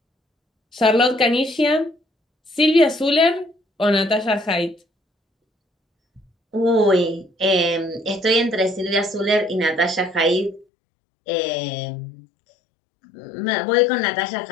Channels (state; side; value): drops out; right; at 10.7 s